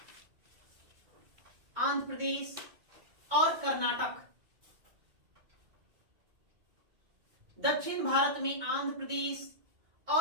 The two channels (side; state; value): left; late; 2.2 ms